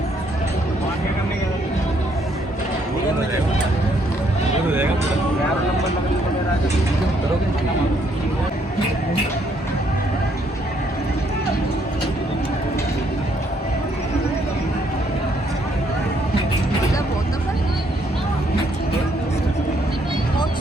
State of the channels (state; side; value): normal; both; correlation 0.70